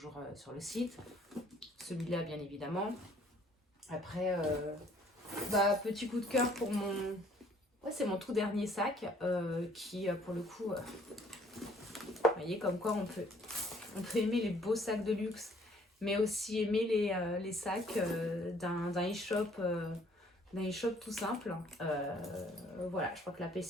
sur le site. Celui-là, bien évidemment. Après... petit coup de cœur pour mon... Ouais, c'est mon tout dernier sac qui, pour le coup... vous voyez, comme quoi on peut aimer les beaux sacs de luxe, mais aussi aimer les sacs d'un e-shop tout simple. Voilà, je crois que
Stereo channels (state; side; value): normal; both; correlation 0.60